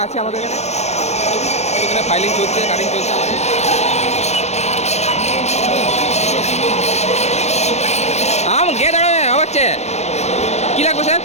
আছে আমাদের এখানে ফাইলিং চলছে কাটিং চলছে আমাদের। গেট হচ্ছে কী লাগবে স্যার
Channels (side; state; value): right; late; 0.32 ms